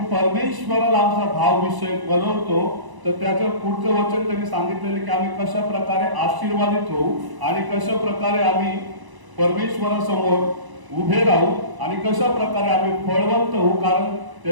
परमेश्वराला आमचा भाव विषय बनवतो तर त्याचं पुढचं वचन त्यांनी सांगितलेलं की आम्ही कशा प्रकारे आशीर्वादित होऊ आणि कशा प्रकारे आम्ही परमेश्वरासमोर उभे राहू आणि कशा प्रकारे आम्ही फळवंत होऊ. कारण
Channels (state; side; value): late; left; 1.0 ms